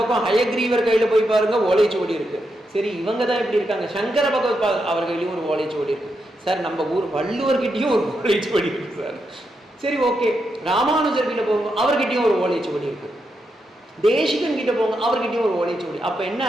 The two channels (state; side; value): normal; both; correlation 0.84